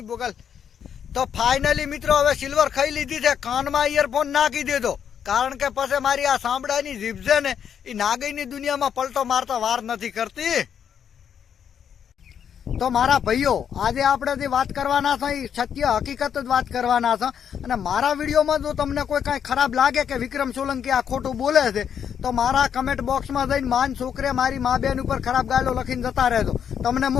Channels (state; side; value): quieter; right; 8.3 dB